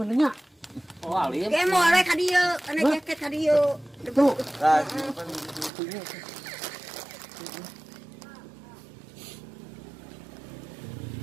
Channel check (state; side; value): drops out; left; at 5.7 s